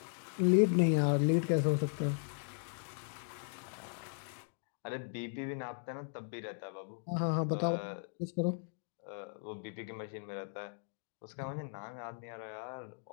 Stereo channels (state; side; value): silent; right; digital silence